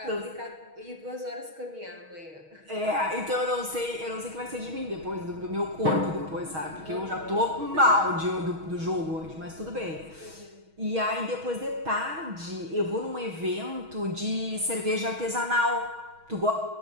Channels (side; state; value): left; late; 6.3 ms